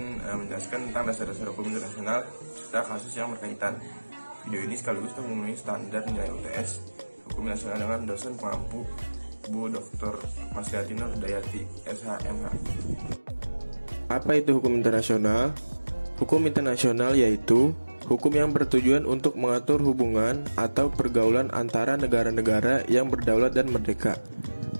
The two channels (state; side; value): inverted; both; correlation -1.00